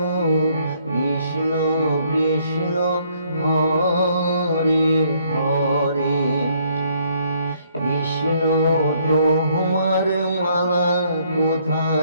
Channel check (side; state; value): both; inverted; correlation -0.67